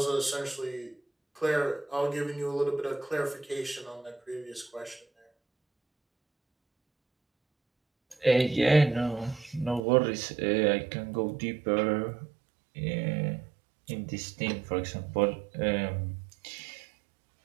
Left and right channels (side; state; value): left; drops out; at 9.8 s